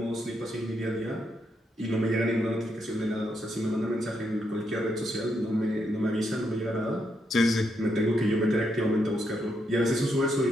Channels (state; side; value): normal; both; correlation 0.79